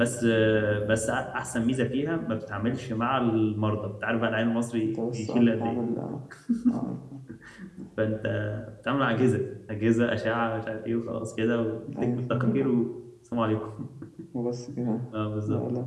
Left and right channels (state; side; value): identical; both; correlation 1.00